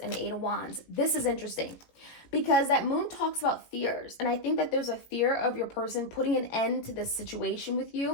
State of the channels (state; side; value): late; right; 17 ms